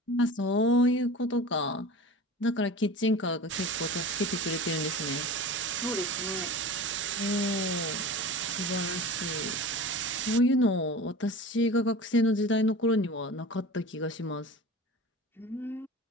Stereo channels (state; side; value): normal; both; correlation 0.35